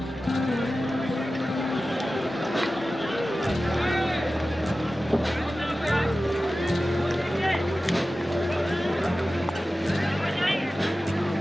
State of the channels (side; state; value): both; normal; correlation 0.95